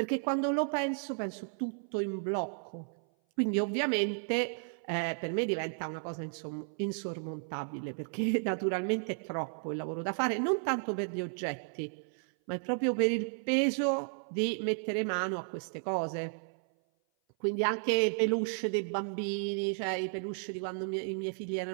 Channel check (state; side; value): silent; left; 55 dB below the other